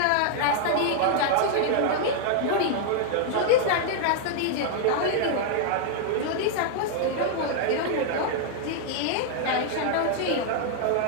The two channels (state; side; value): different; both; correlation -0.01